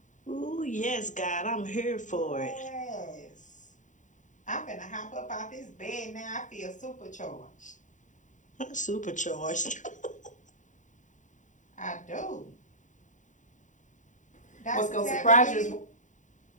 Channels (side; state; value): right; late; 0.36 ms